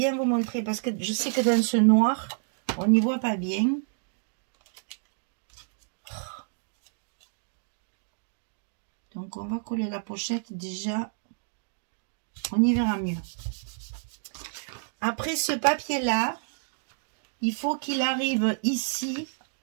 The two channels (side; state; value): left; silent; digital silence